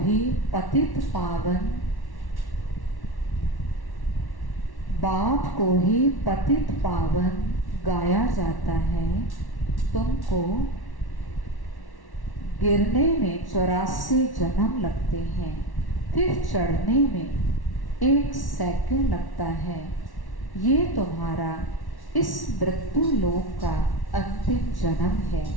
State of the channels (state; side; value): late; right; 1.1 ms